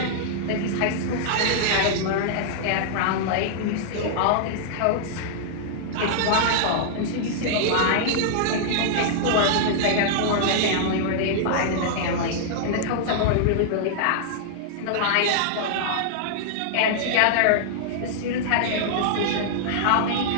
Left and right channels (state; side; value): different; both; correlation -0.01